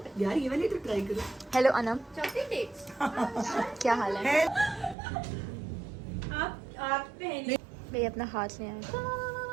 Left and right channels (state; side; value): drops out; left; at 5.0 s